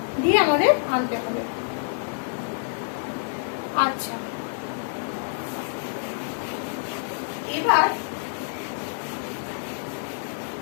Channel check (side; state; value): right; silent; 60 dB below the other